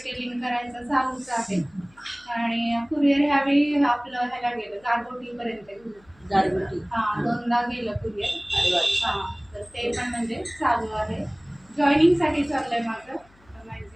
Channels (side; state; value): left; noise; hum, 30 dB below the sound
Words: करायचं चालूच आहे. आणि कुरिअर ह्यावेळी आपलं ह्याला गेलं गारगोटीपर्यंत गेलं. हां, 2दा गेलं कुरिअर. हां, तर ते पण म्हणजे चालू आहे. जॉईनिंगसाठी चाललंय माझं.